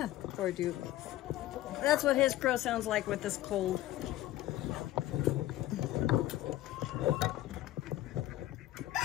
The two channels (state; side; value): quieter; right; 15.1 dB